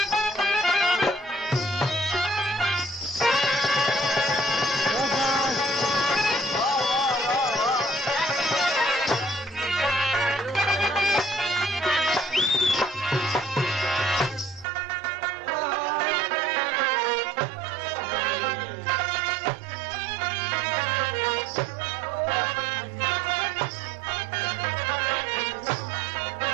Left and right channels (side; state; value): left; drops out; at 14.7 s